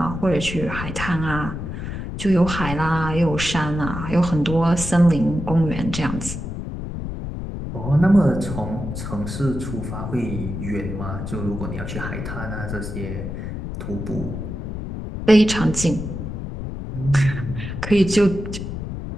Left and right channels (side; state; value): left; noise; rumble, 6 dB below the sound